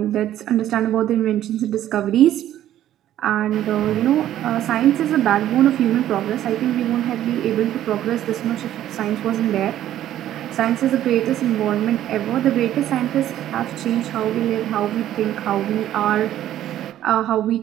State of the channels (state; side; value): quieter; left; 12.3 dB